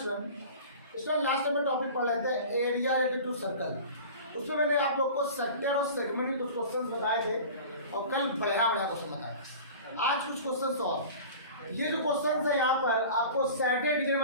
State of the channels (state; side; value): inverted; both; correlation -0.38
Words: Last time में टॉपिक पढ़ रहे थे एरिया रिलेटेड टू सर्कल। उसमें मैंने आप लोग को सेक्टर और सेगमेंट के कुछ क्वेश्चंस बताए थे और कल बढ़िया क्वेश्चन बताया। आज कुछ क्वेश्चंस और ये जो क्वेश्चंस है यहाँ पर आपको सैटरडे डिवीजन